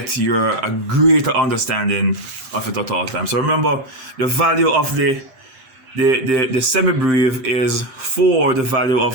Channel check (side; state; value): left; late; 8.6 ms